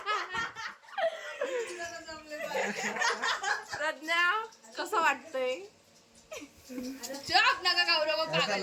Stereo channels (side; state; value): both; identical; correlation 1.00